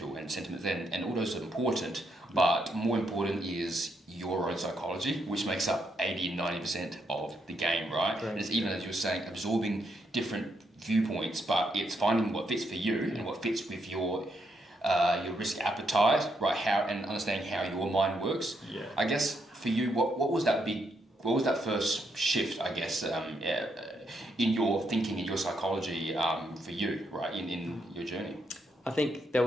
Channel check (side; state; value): both; normal; correlation 0.78